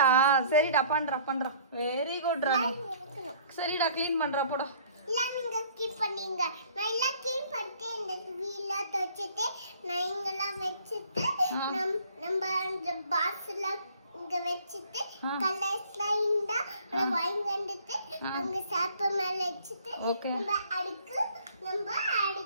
சரிடா பண்றா. வெரி குட்ரா. சரிடா க்ளீன் பண்றா போடா. நீங்க கீப் பண்ணீங்க. நான் எல்லாம் கீப் பண்ணிட்டு இந்த வீல துவைச்சிட்டு நான் இங்கெல்லாம் வச்சுட்டு நம்ம அந்த பாக்ஸ்ல இங்க வச்சுட்டு கலர்ஸ்லாம் இருந்தா வாங்கி வந்துட்டு அங்க சாப்ப மேல வச்சுட்டு நம்ம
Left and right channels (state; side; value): inverted; both; correlation -0.56